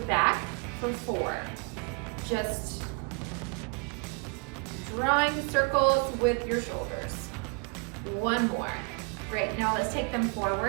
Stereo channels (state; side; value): quieter; left; 33.8 dB